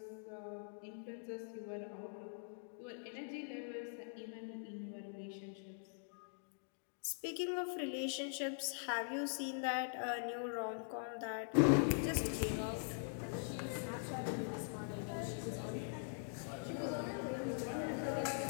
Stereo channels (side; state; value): right; silent; digital silence